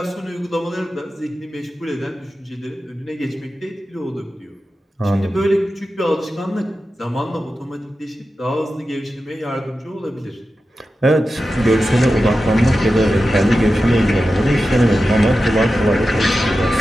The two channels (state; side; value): normal; both; correlation 0.92